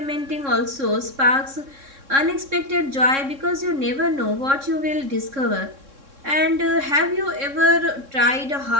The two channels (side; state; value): left; late; 3.6 ms